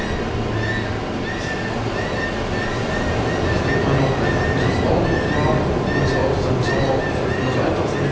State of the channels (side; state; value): both; identical; correlation 1.00